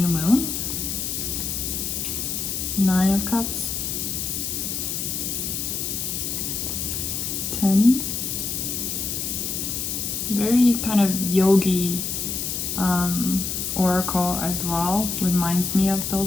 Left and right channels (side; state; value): left; noise; hiss, 2 dB below the sound